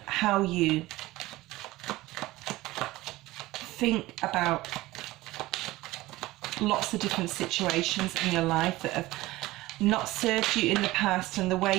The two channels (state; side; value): quieter; left; 18.4 dB